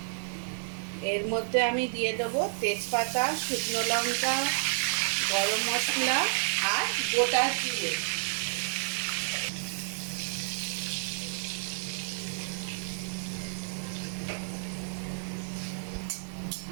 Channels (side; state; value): left; silent; digital silence